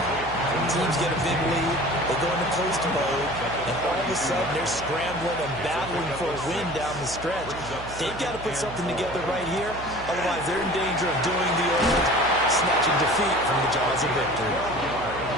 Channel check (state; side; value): noise; right; hum, 13 dB below the sound